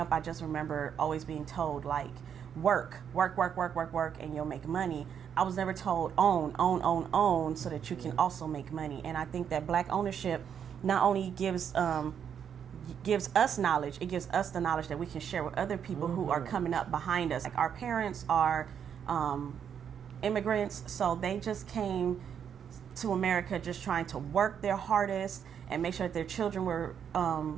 I just remember always being told, like, work, and you'll make money. I was never told own, so that you can also make money. And I think that Black ownership not only gives us knowledge, it gives us the knowledge that we can share with other people who are coming up behind us. Like, our parents are immigrants, so they just came to America just trying to work their hardest and make sure that their children were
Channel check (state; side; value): quieter; left; 8.1 dB